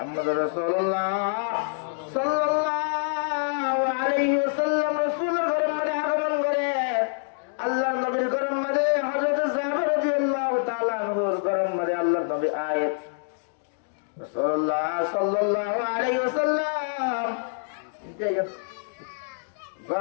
রাসূলুল্লাহ সাল্লাল্লাহু আলাইহি ওয়াসাল্লাম রাসূলের ঘরের মাঝে আগমন করে আল্লাহর নবীর ঘরের মাঝে হযরত জাবের রাদিয়াল্লাহু তাআলা আনহুর ঘরের মাঝে আল্লাহর নবী আয়াত রাসূলুল্লাহ সাল্লাল্লাহু আলাইহি ওয়াসাল্লাম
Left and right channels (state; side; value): silent; right; digital silence